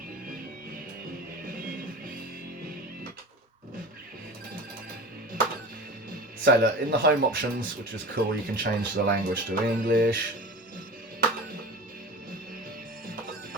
So look, in the home options, which is cool, you can change the language to English.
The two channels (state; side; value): normal; both; correlation 0.34